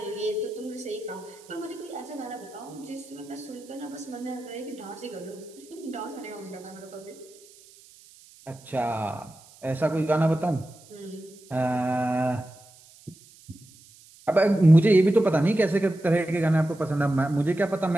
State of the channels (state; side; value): noise; right; hiss, 24 dB below the sound